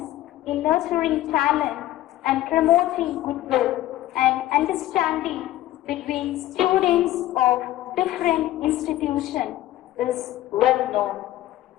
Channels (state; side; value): quieter; right; 14.7 dB